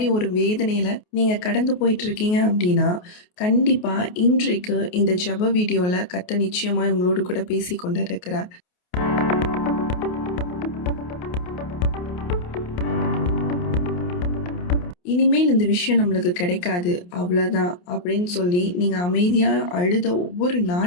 ஒரு வேதனையில நீங்க கடந்து போயிட்டுருக்கீங்க அப்டின்னா, கண்டிப்பா இன்றைக்கு இந்த ஜெப வீடியோல கர்த்தர் நிச்சயமாய் உங்களோடு கூட பேசிக் கொண்டிருக்கிறார். இனிமேல் இந்த விஷயம் நம்மளுக்கு கிடைக்காது, அவ்வளோதான் அப்படின்னு சொல்லி நீங்க அமைதியா அழுத ஒவ்வொரு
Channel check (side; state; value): right; late; 28 ms